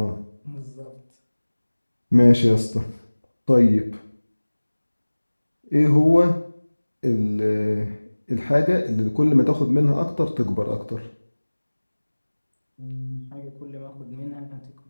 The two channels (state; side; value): inverted; both; correlation -1.00